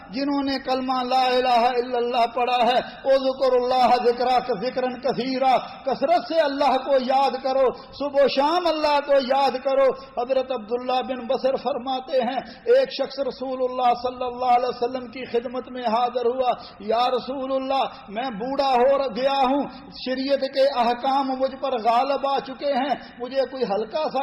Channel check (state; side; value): identical; both; correlation 1.00